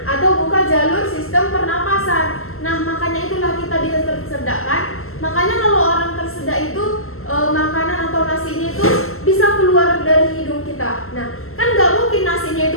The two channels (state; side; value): late; right; 0.62 ms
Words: atau buka jalur sistem pernapasan. Nah, makanya itulah kita bisa tersedak kan? Makanya kalau orang tersedak itu makanan atau nasinya itu bisa keluar dari hidung kita. Nah, kan nggak mungkin nasinya itu